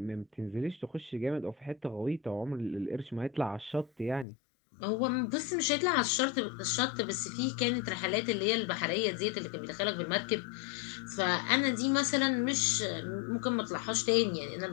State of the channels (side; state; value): right; drops out; at 4.2 s